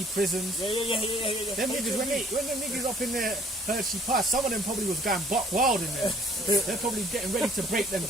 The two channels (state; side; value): normal; both; correlation 0.57